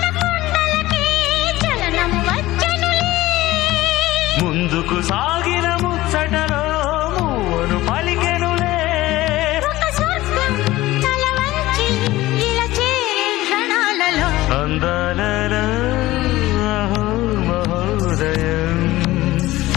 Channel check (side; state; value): right; quieter; 17.3 dB